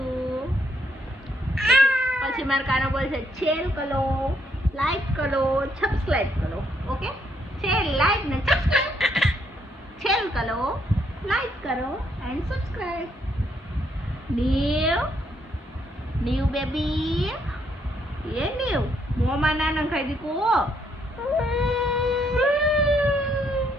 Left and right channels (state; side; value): normal; both; correlation 0.73